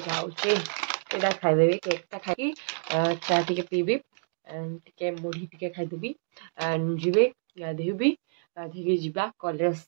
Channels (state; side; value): silent; left; digital silence